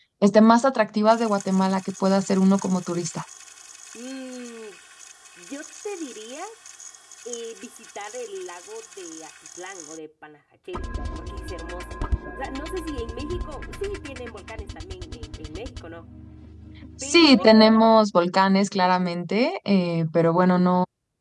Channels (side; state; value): both; identical; correlation 1.00